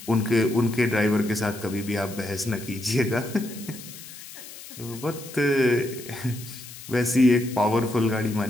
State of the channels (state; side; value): noise; left; hiss, 15 dB below the sound